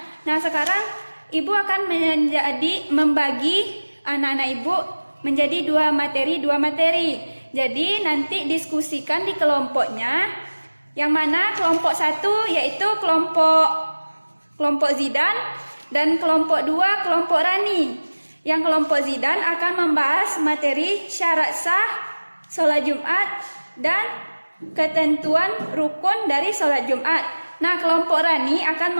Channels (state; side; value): inverted; both; correlation -1.00